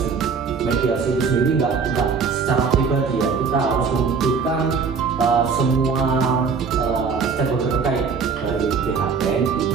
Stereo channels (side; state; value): left; quieter; 5.5 dB